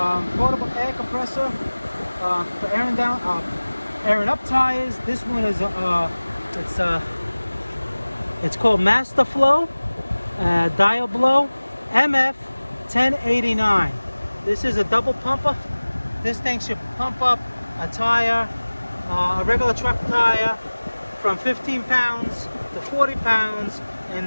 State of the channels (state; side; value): inverted; both; correlation -1.00